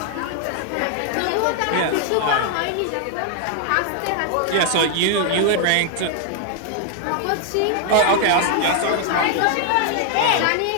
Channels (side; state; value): both; different; correlation 0.00